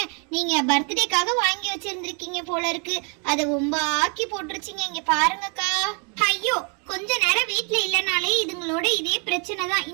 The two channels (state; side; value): quieter; left; 37.1 dB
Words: நீங்க பர்த்டேக்காக வாங்கி வச்சிருந்திருக்கீங்க போல இருக்கு, அதை ரொம்ப ஆக்கி போட்டுருச்சிங்க. இங்க பாருங்கக்கா. ஐயோ, கொஞ்ச நேரம் வீட்டுல இல்லனாலே இதுங்களோட இதே பிரச்சனை தான்.